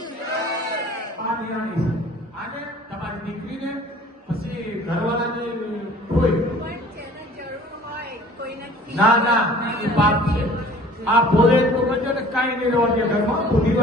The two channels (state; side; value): normal; both; correlation 0.49